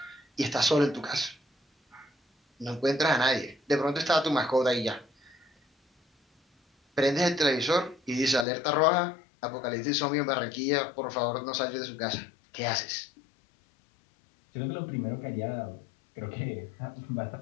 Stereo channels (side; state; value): right; drops out; at 8.5 s